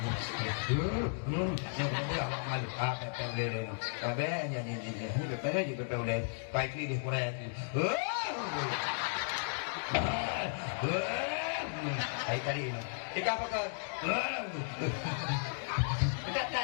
Yang dia awak malu. Pepek melong. Bebek nyanyi. Pepek melong. Baik ni di Korea tu. Ay tadi no. Ika apa kau? Bedak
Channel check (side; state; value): right; silent; digital silence